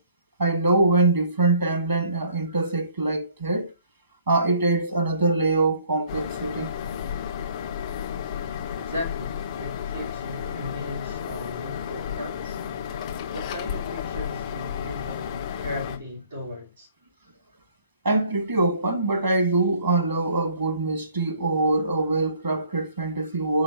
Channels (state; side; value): inverted; both; correlation -0.58